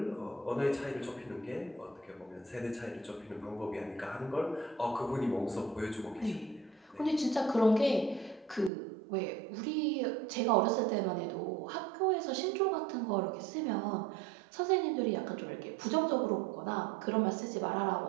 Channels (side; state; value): left; drops out; at 8.7 s